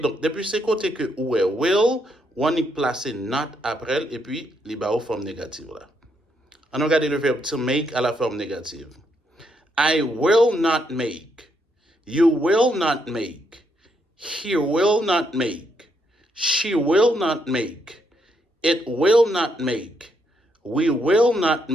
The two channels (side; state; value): both; normal; correlation 0.76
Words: Donc, depuis ce côté que ou est will, on y place not après et puis les bas aux formes négatives. Là. On regarde le verbe to make à la forme négative. I will not make. You will not make. He will not make. She will not make. It will not make. We will not